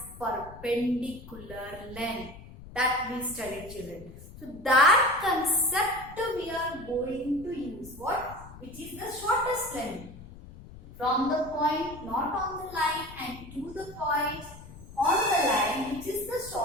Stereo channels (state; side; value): noise; left; rumble, 16 dB below the sound